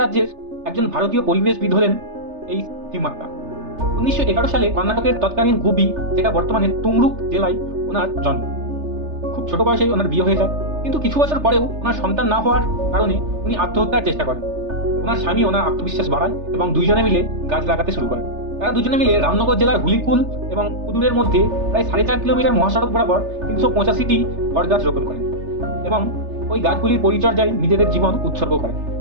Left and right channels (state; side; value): late; left; 3.3 ms